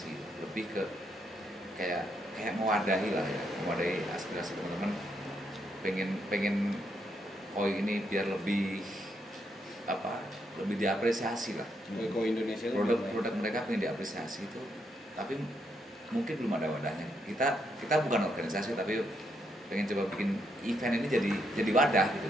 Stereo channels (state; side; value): normal; both; correlation 0.77